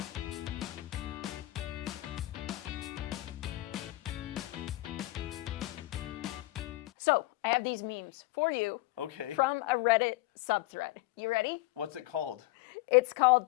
So, I have these memes for you Okay. from a Reddit subthread. You ready? What's it called? It's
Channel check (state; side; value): quieter; right; 18.4 dB